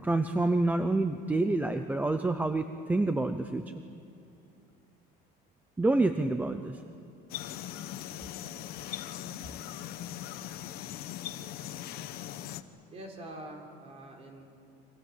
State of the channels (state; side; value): normal; both; correlation 0.84